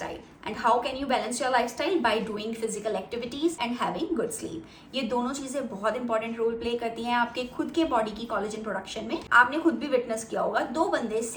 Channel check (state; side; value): identical; both; correlation 1.00